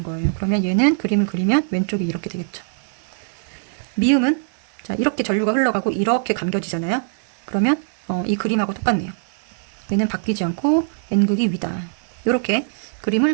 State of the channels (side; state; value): left; silent; 61 dB below the other